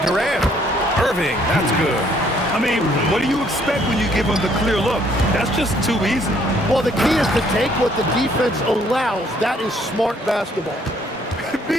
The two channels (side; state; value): both; normal; correlation 0.65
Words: Irving, that's good. I mean, what do you expect when you give him the clear look? That's just too easy. Well, the key is to take what the defense allows. That is smart basketball.